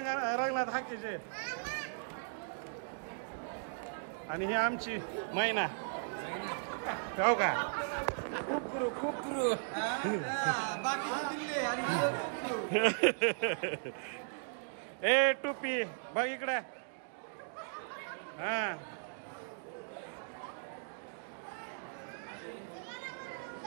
हाकीचे. आणि ही आमची मैना हो का. ए टोपी बघ इकडे. हा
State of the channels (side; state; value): left; silent; digital silence